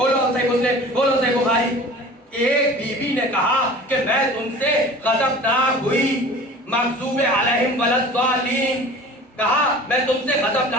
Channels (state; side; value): normal; both; correlation 0.42